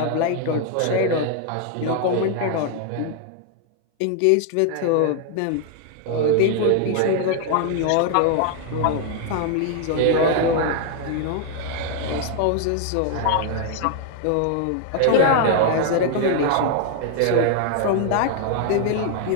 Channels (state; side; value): different; both; correlation 0.00